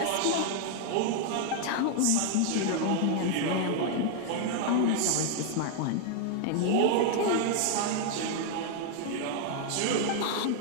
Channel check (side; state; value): both; different; correlation 0.00